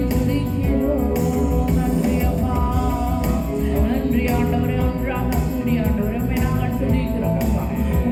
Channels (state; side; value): identical; both; correlation 1.00